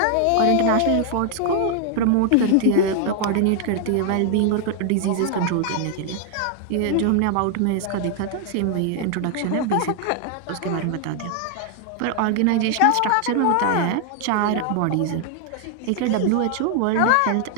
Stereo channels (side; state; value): both; different; correlation 0.00